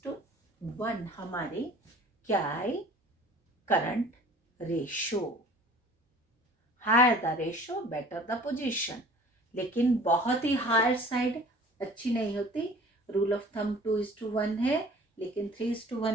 हमारी क्या है? Current ratio. Higher the ratio better the position, लेकिन बहुत ही higher side अच्छी नहीं होती। Rule of thumb 2:1 है, लेकिन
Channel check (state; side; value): normal; both; correlation 0.48